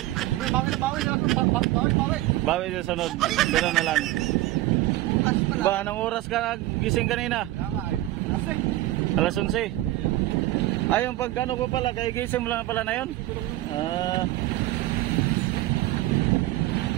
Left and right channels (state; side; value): quieter; left; 16.5 dB